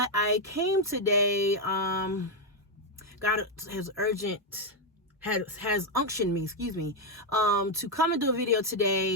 I came today. God has unctioned me, to come and do a video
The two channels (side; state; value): both; normal; correlation 0.03